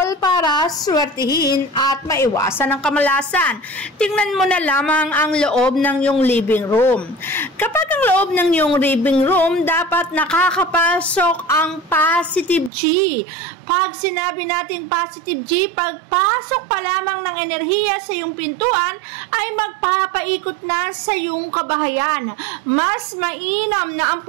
para swertihin at maiwasan ang kamalasan. Tingnan mo na lamang ang loob ng iyong living room. Kapag ang loob ng iyong living room, dapat nakakapasok ang positive chi. Pag sinabi natin positive chi, pagpasok pa lamang ng enerhiya sa iyong pintuan ay magpapaikot na sa iyong kabahayan. Mas mainam na ang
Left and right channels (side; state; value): left; drops out; at 12.7 s